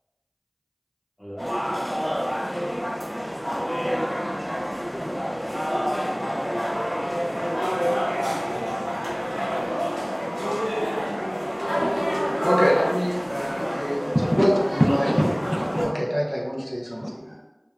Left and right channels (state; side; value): identical; both; correlation 1.00